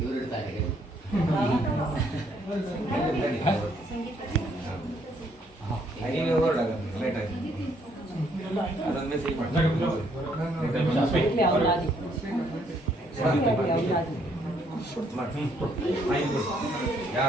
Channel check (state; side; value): normal; both; correlation 0.69